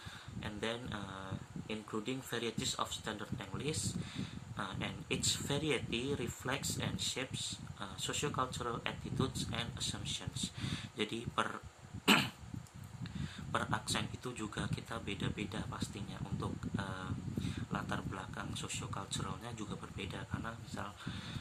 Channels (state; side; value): identical; both; correlation 1.00